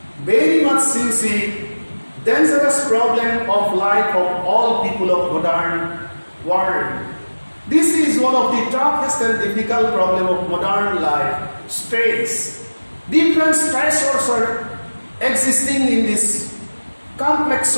very much, you see, dangerous problem of life of all people of modern world. This is one of the toughest and difficult problem of modern life, stress. Different stressors are existing in this complex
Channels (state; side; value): inverted; both; correlation -1.00